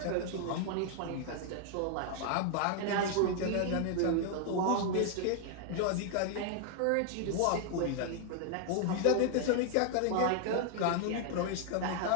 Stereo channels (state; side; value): different; both; correlation 0.00